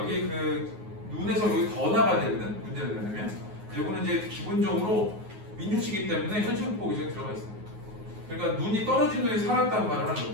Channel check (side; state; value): left; late; 9.5 ms